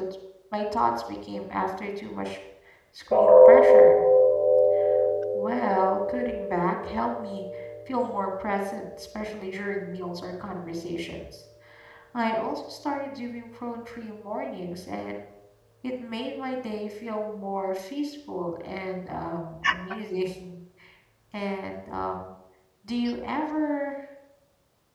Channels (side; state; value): both; identical; correlation 1.00